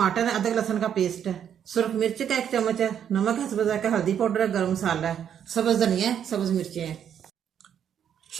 है, अदरक लहसुन का पेस्ट है, सुरख मिर्च का 1 चम्मच है, नमक है स्वाद का, हल्दी पाउडर है, गरम मसाला है, सब्ज धनिया है, सब्ज मिर्चें हैं।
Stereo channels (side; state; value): left; quieter; 8.9 dB